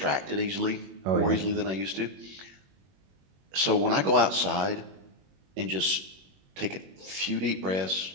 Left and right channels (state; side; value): late; left; 21 ms